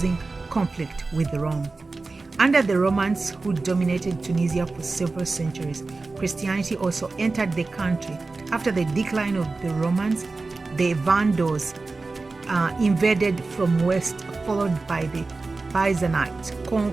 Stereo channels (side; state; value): left; quieter; 3.7 dB